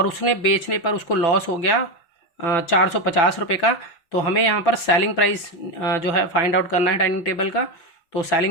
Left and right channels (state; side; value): late; right; 6.0 ms